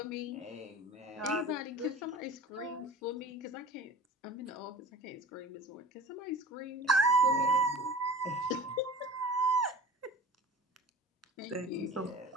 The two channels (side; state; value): both; normal; correlation 0.39